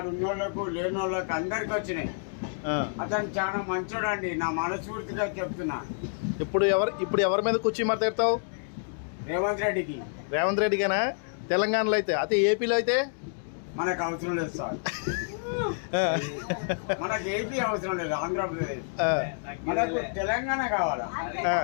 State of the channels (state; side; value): silent; right; digital silence